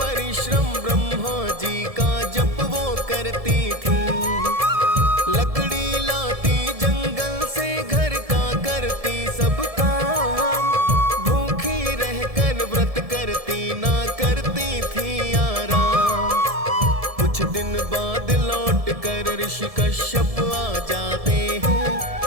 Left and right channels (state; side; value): late; left; 1.7 ms